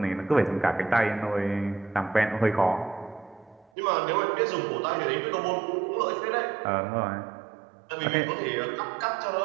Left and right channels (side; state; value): left; drops out; at 3.7 s